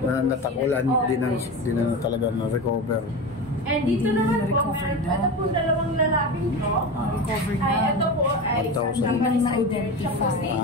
Natakulan, di na talaga na-recover. And dito naman po, ito po dalawang lalabing to. Ito po ay siya po si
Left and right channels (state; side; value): normal; both; correlation 0.25